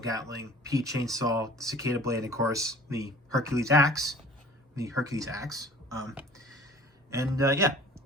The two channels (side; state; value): both; normal; correlation 0.47